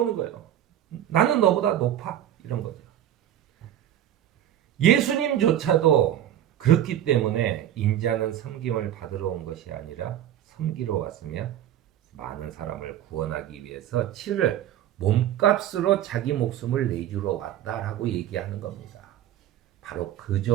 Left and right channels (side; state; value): left; quieter; 11.5 dB